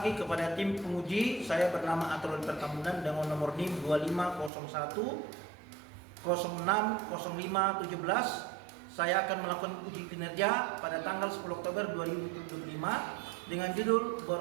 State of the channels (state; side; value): drops out; left; at 4.5 s